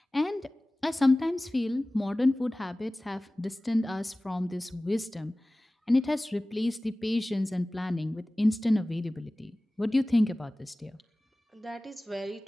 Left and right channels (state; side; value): normal; both; correlation 0.98